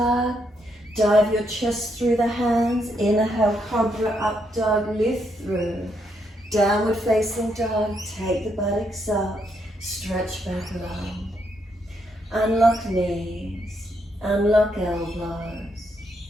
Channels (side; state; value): both; normal; correlation 0.77